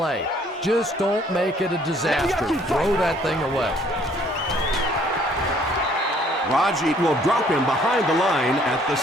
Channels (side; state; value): both; normal; correlation 0.61